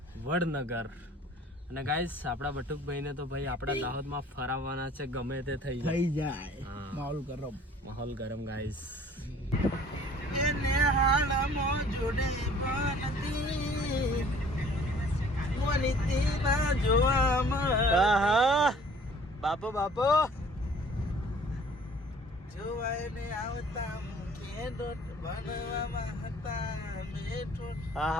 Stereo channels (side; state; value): both; normal; correlation 0.53